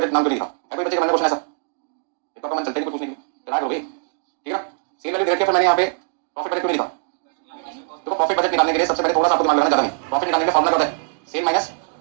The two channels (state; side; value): silent; left; digital silence